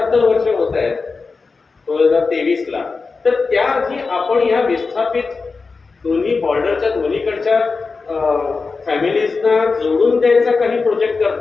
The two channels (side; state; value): right; quieter; 4.4 dB